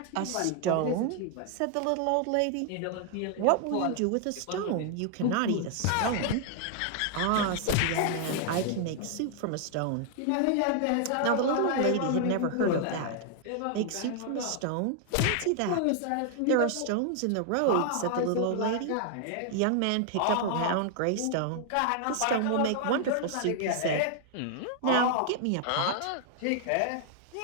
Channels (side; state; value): both; different; correlation 0.00